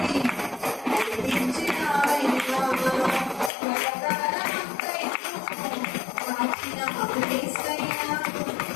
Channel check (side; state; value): right; drops out; at 3.5 s